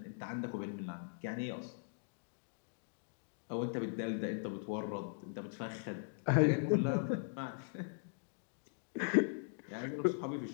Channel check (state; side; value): silent; right; digital silence